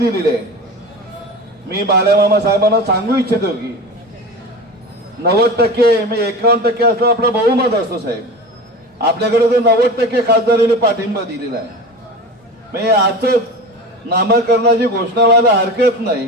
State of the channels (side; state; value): both; normal; correlation 0.31